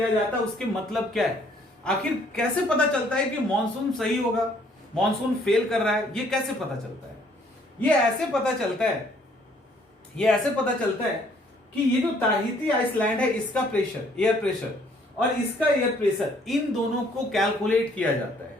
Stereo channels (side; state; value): both; normal; correlation 0.62